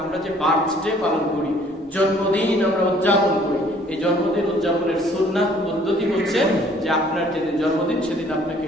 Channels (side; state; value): both; normal; correlation 0.58